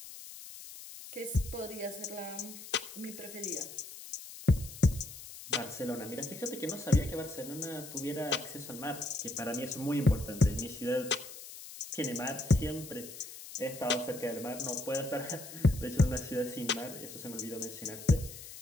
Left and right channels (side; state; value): left; noise; hiss, 13 dB below the sound